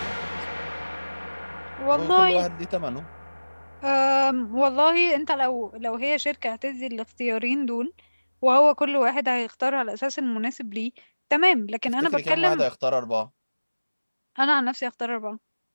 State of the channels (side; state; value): both; inverted; correlation -1.00